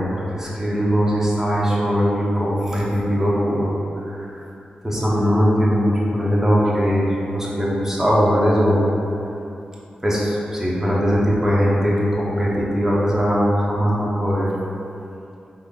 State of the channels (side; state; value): both; normal; correlation 0.91